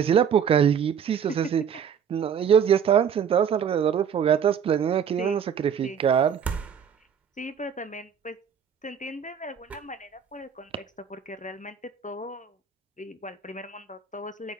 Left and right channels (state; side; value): quieter; left; 7.7 dB